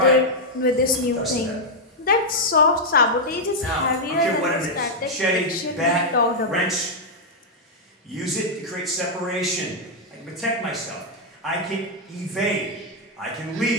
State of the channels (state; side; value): normal; both; correlation -0.03